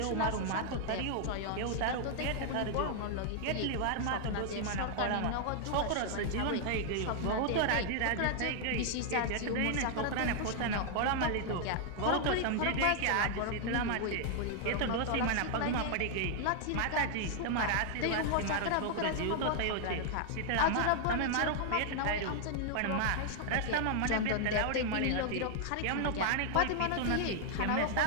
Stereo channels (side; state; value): both; different; correlation 0.00